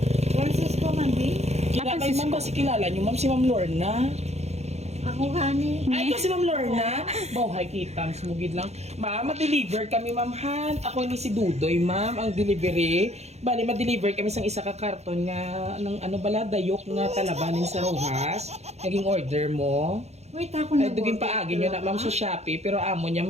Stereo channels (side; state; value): left; late; 0.31 ms